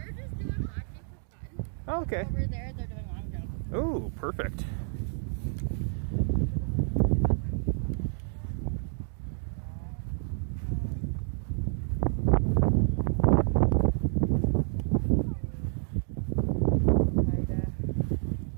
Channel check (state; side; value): silent; left; 58 dB below the other